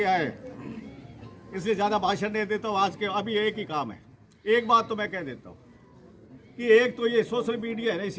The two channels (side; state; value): both; identical; correlation 1.00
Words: आए, इसलिए ज़्यादा भाषण नहीं देता हूँ। आज के अभी एक ही काम है। एक बात तो मैं कह देता हूँ कि एक तो ये सोशल मीडिया है ना,